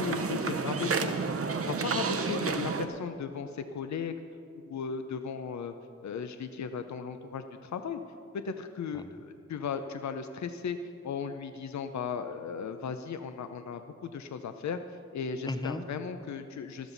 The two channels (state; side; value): normal; both; correlation 0.14